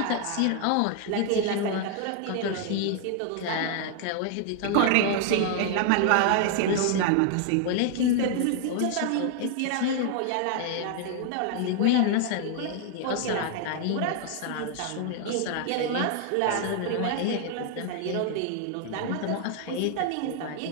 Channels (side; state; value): both; different; correlation 0.00